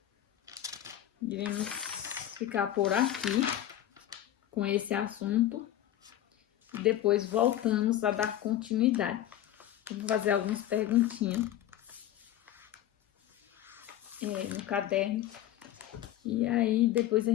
iremos ficar por aqui com esse assunto e depois voltamos a dar continuidade. Vou fazer algumas perguntinhas. no caderno. E aí, depois a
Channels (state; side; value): quieter; right; 12.4 dB